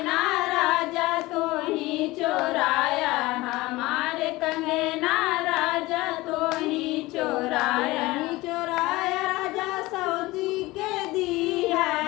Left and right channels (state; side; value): quieter; right; 20.1 dB